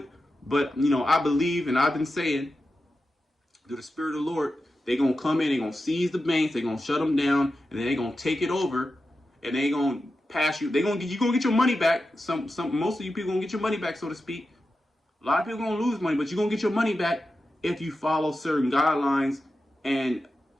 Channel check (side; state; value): both; normal; correlation 0.91